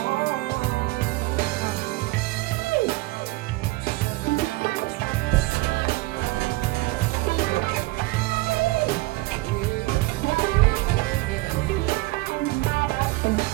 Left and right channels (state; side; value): quieter; left; 20.9 dB